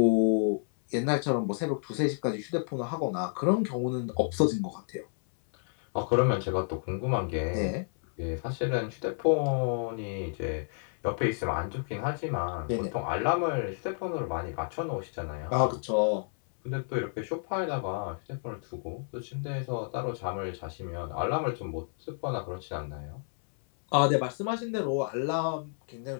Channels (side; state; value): right; silent; 58 dB below the other